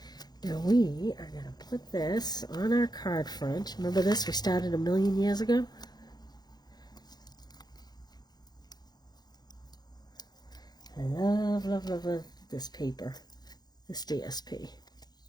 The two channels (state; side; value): late; right; 0.20 ms